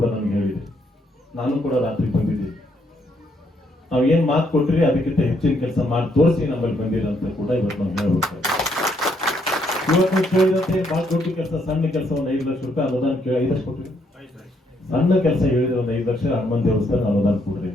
ನಮ್ಗೆ ಹೇಳಿದೆ. ನಾನು ಕೂಡ ರಾತ್ರಿ ಬಂದಿದ್ದೆ. ನಾವ್ ಏನ್ ಮಾತು ಕೊಟ್ರಿ ಅದಕ್ಕಿಂತ ಹೆಚ್ಚಿನ ಕೆಲಸ ಮಾಡಿ ತೋರಿಸಿ ನಮ್ಮಲ್ಲಿ ಬಂದಿರಂತ ಕೂಡ ಇವತ್ತು ನಾವು ಹೇಳ್ಬೇಕು. ಇವತ್ತು ಕೇಳಿದಂತೆ ಬಹಳ ದೊಡ್ಡ ಕೆಲಸ, ಸಣ್ಣ ಕೆಲಸ ಒಂದು 5 ಲಕ್ಷ ರೂಪಾಯಿ ಅನುದಾನ ಕೇಳಿ 5 ಲಕ್ಷ ಕೊಟ್ರಿ. ಸಣ್ಣ ಕೆಲಸ ಹೇಳಿದ್ರೆ ಒಂದು 5 ಲಕ್ಷ ಹನುಮಂತ ದೇವಸ್ಥಾನ ಅನುದಾನ ಕೊಡ್ರಿ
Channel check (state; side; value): normal; both; correlation 0.73